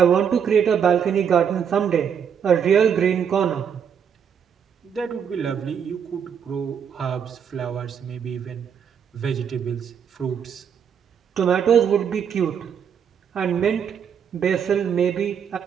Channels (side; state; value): left; quieter; 7.7 dB